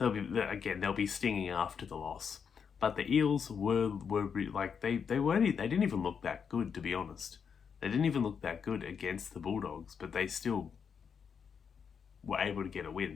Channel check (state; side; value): quieter; right; 6.7 dB